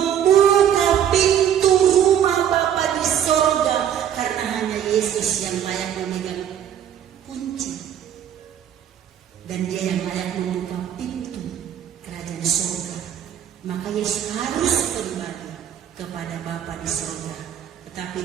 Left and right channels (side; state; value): left; quieter; 9.7 dB